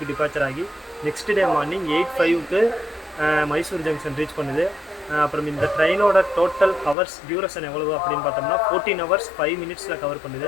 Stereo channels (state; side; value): drops out; right; at 7.0 s